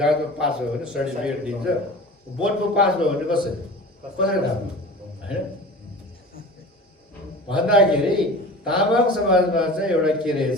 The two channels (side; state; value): both; normal; correlation 0.37